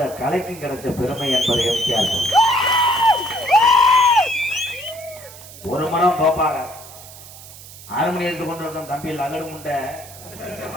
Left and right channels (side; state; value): right; noise; hiss, 17 dB below the sound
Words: கலைக்கும் கிடைச்ச பெருமை என்பதை எம்ஜிஆர். ஒரு மனம் தோப்பாக ஆறுமணி எடுத்து கொண்டிருக்கும் தம்பி அகடு முண்டை,